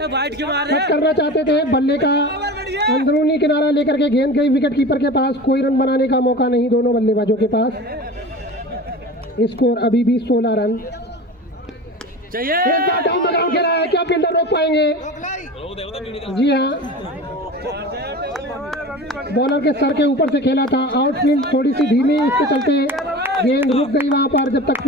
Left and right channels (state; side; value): normal; both; correlation 0.33